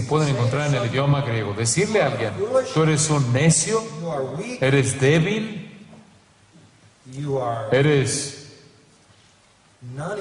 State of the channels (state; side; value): identical; both; correlation 1.00